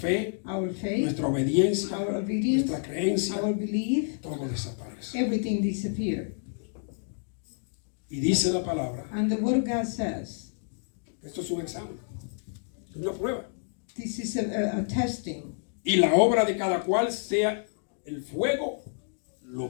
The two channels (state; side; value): silent; right; digital silence